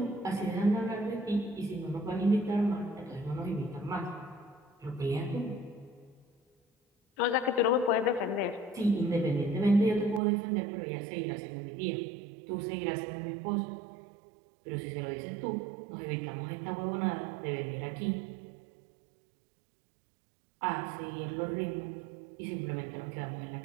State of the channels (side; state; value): left; drops out; at 10.2 s